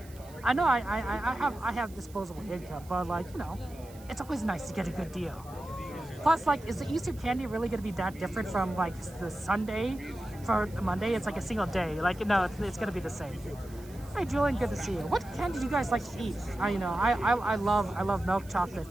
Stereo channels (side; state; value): right; noise; hiss, 23 dB below the sound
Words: I know I have disposable income, but like, you know, it's always nice to get a good deal. Plus, like, is the Easter candy really going to be that different from like the Sunday for Monday? It's like a single day. Like, no, it's going to be the same. Hey, Julian, good to see you. What candy do you guys like to eat? I love milk chocolate.